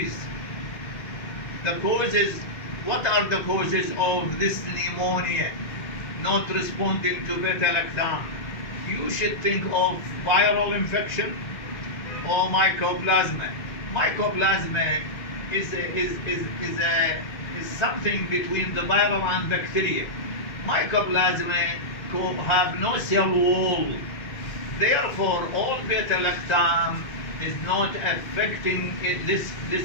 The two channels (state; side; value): late; right; 1.9 ms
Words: The causes, what are the causes of this pneumonia not responding to beta-lactam? You should think of viral infection or mycoplasma. Mycoplasma is something between the viral and bacteria. Mycoplasma have no cell wall. Therefore, all beta-lactam is not affecting